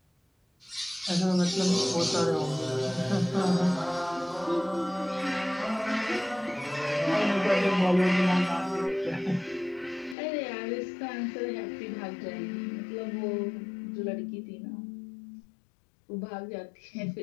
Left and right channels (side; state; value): right; drops out; at 10.2 s